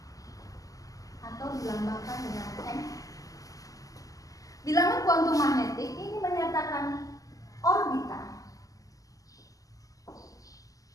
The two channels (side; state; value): right; late; 0.17 ms